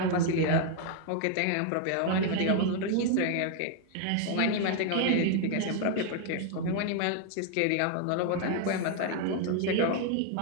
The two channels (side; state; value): both; different; correlation 0.00